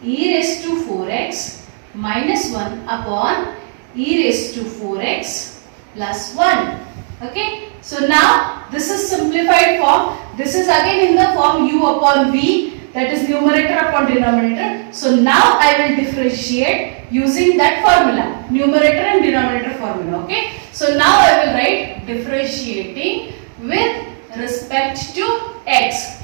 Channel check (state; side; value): silent; left; digital silence